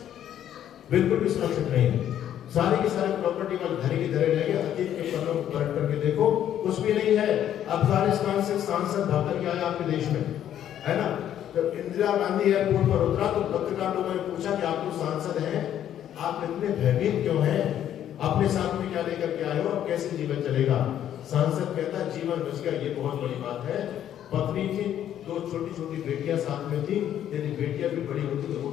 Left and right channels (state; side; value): quieter; right; 10.7 dB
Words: बिल्कुल भी सुरक्षित नहीं है। सारी की सारी प्रॉपर्टी वाले धरे की धरे रहेंगे। अतीत के पन्नों को पलट करके देखो, कुछ भी नहीं है। अफगानिस्तान से सांसद भाग करके आया आपके देश में, है ना? जब इंदिरा गांधी एयरपोर्ट पर उतरा तो पत्रकार लोगों ने पूछा कि आप तो सांसद हैं, आप इतने भयभीत क्यों हैं? अपने साथ में क्या लेकर के आए हो? अब कैसे जीवन चलेगा? सांसद कहता जीवन बच गया, ये बहुत बड़ी बात है। पत्नी थी, 2 छोटी छोटी बेटियां साथ में थी, यदि बेटियां भी बड़ी होती तो वो